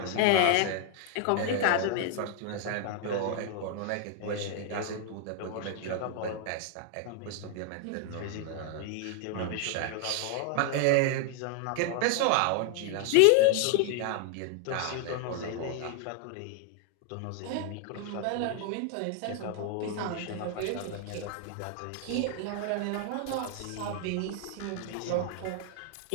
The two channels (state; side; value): different; both; correlation 0.00